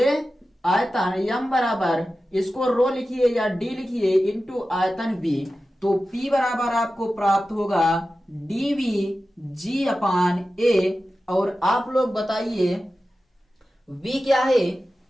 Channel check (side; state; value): both; normal; correlation 0.94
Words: आयतन। यम बराबर इसको रो लिखिए या डी लिखिए इंटू आयतन v। तो P बराबर आपको प्राप्त होगा dv g अपान a। और आप लोग बताइए v क्या है?